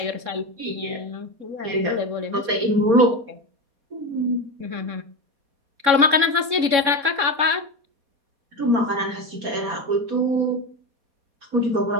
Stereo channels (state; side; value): late; left; 3.6 ms